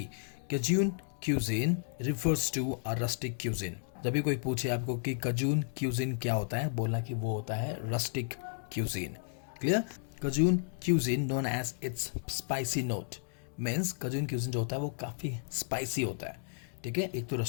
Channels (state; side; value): silent; right; digital silence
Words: Cajun Cuisine refers to a rustic cuisine. जब भी कोई पूछे आपको कि Cajun Cuisine क्या होता है, बोलना कि वो होता है rustic cuisine. Clear? Cajun Cuisine known as its spicy note means Cajun Cuisine जो होता है वो काफ़ी spicy होता है, ठीक है. एक तो